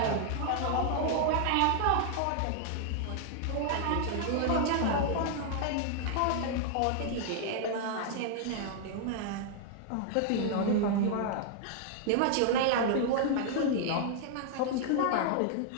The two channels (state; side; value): different; both; correlation 0.00